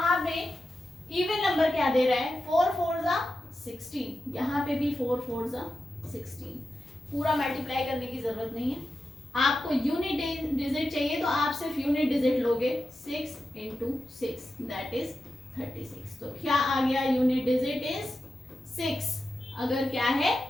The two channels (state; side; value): normal; both; correlation 0.90